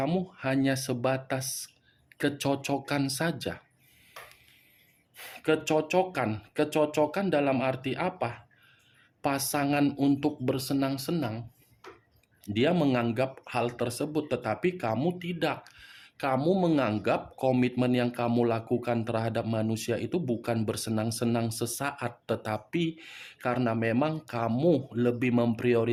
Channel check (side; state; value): both; identical; correlation 1.00